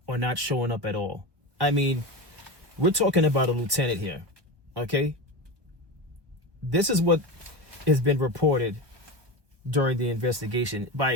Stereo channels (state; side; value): late; left; 1.2 ms